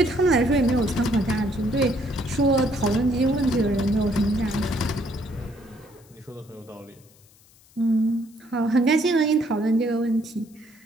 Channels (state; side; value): noise; left; hiss, 29 dB below the sound